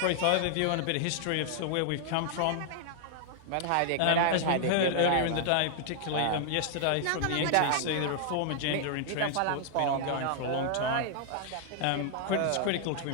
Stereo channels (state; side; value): different; both; correlation -0.01